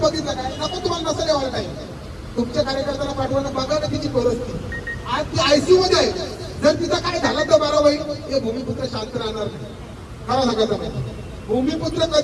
काय? नको तुम्हाला नसेल यावं काही, तुमच्या कार्यकर्त्याला पाठवणं बघा ना तिची परिस्थिती. आज ती आयसीयू मध्ये आहे. जर तिथं काय झालं तर बारा बाई हे भूमिपुत्र शांत राहणार नाही. खरं सांगायचं नाही, भूमिपुत्र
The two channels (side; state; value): both; identical; correlation 1.00